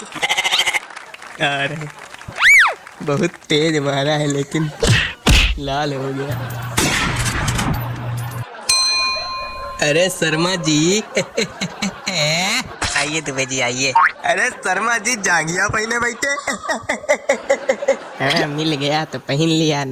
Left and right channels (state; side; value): identical; both; correlation 1.00